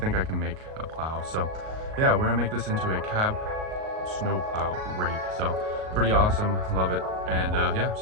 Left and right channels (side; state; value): left; late; 38 ms